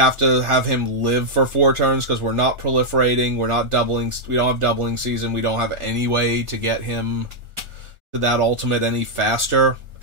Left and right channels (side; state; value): left; late; 1.4 ms